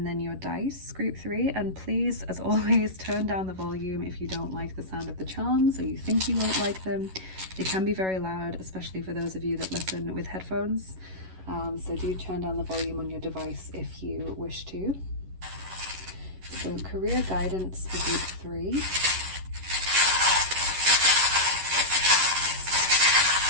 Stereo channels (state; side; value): late; left; 11 ms